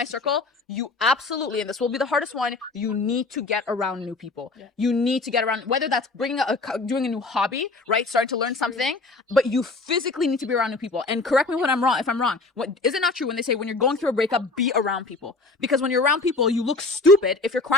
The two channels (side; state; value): right; quieter; 3.5 dB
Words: circle. You absolutely, and this will be the hardest one, you need to get around new people. Yeah. You need to get around, whether that's doing a new hobby, right? Starting to learn something, but you physically need to be around new people. And correct me if I'm wrong. Is it not true when they say when you're going through a breakup, be around people? Because when you're around people, you look stupid if you're